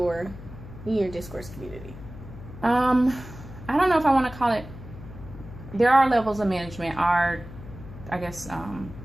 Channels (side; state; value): left; noise; hum, 14 dB below the sound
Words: discourse community? I don't know if I want to call it. There are levels of management.